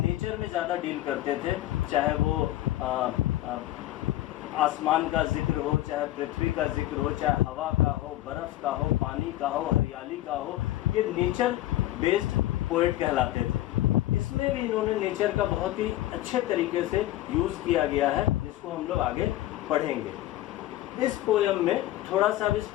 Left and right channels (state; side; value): quieter; right; 15.1 dB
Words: में ज़्यादा डील करते थे, चाहे वो आसमान का जिक्र हो, चाहे पृथ्वी का जिक्र हो, चाहे हवा का हो, बर्फ़ का हो, पानी का हो, हरियाली का हो। ये नेचर बेस्ड पोएट कहलाते थे। इसमें भी इन्होंने नेचर का बहुत ही अच्छे तरीके से यूज़ किया गया है, जिसको हम लोग आगे पढ़ेंगे। इस पोयम में थोड़ा सा इस